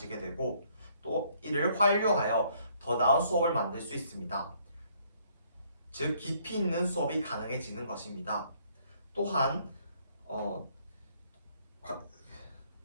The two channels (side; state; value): both; inverted; correlation -0.65